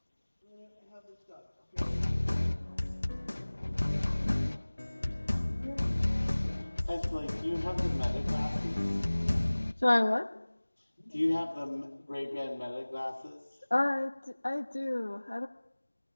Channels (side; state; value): both; inverted; correlation -1.00